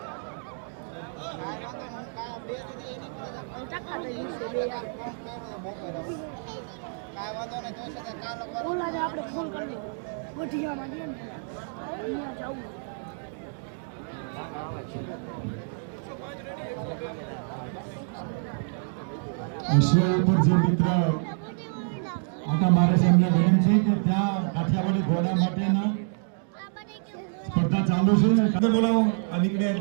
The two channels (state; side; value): silent; left; 60 dB below the other